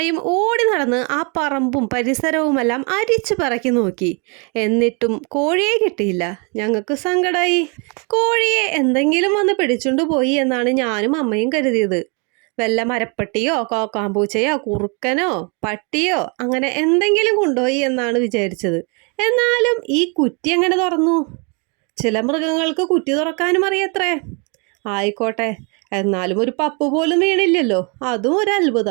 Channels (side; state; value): left; quieter; 33.7 dB